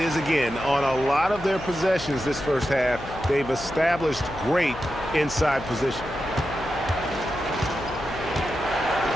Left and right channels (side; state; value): left; noise; hum, 14 dB below the sound